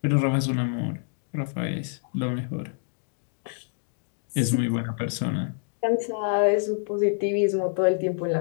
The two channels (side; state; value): right; silent; 60 dB below the other